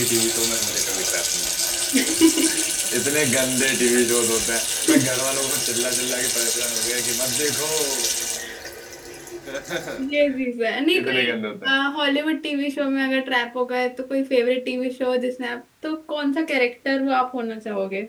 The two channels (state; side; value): identical; both; correlation 1.00